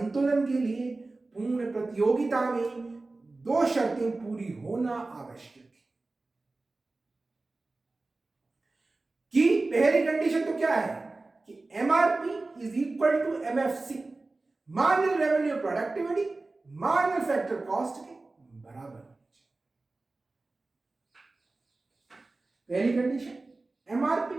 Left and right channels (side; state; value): left; quieter; 3.3 dB